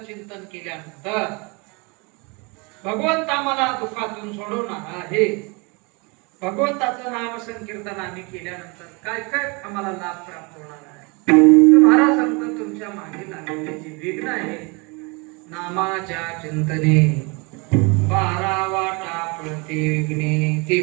चिंतन केल्यानंतर भगवंत आम्हाला दुःखातून सोडवणार आहे. भगवंताचं नाम संकीर्तन आम्ही केल्यानंतर काय काय आम्हाला लाभ प्राप्त होणार आहे, तर महाराज सांगतात, तुमच्या मागे लागलेले जे विघ्न आहे नामाच्या चिंतने 12 वाटा प्रति विघ्ने, ते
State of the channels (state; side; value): quieter; left; 29.3 dB